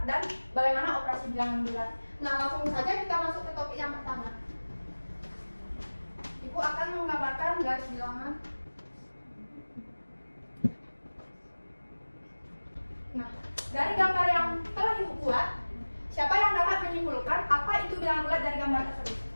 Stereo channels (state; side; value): inverted; both; correlation -1.00